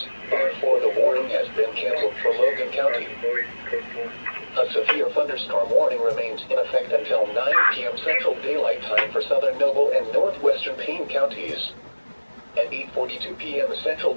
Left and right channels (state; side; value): inverted; both; correlation -1.00